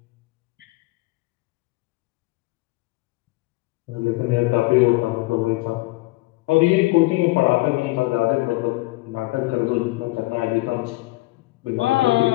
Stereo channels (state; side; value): quieter; right; 21.2 dB